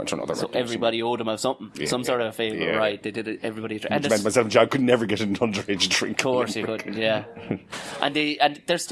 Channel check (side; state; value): both; identical; correlation 1.00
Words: or another. So everybody owed them of something, some sort of a favour, right? They did it, everybody... And myself and John could never get an underage drink. Of course you could, yeah. and there's